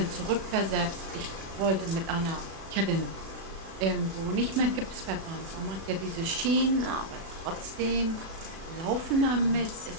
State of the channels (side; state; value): left; late; 36 ms